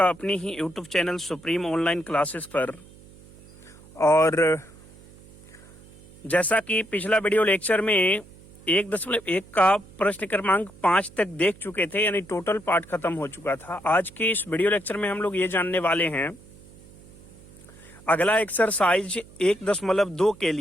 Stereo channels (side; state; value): right; noise; hum, 22 dB below the sound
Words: अपनी ही YouTube channel supreme online classes पर। और जैसा कि पिछला वीडियो लेक्चर में 1.1 का प्रश्न क्रमांक 5 तक देख चुके थे, यानी टोटल पार्ट खत्म हो चुका था। आज के इस वीडियो लेक्चर में हम लोग ये जानने वाले हैं, अगला एक्सरसाइज 1.2 के